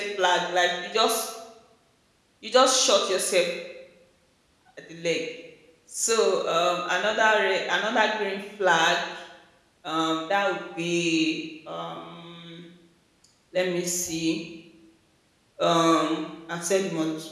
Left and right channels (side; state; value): both; identical; correlation 1.00